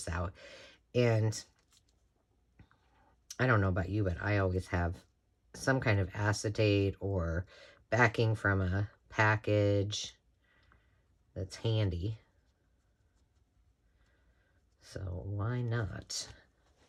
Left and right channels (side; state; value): both; identical; correlation 1.00